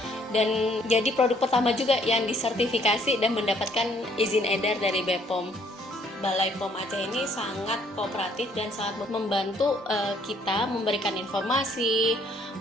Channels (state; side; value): normal; both; correlation 0.64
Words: dan jadi produk pertama juga yang disertifikasi dan mendapatkan izin edar dari BPOM. Balai POM Aceh ini sangat kooperatif dan sangat membantu kita memberikan informasi,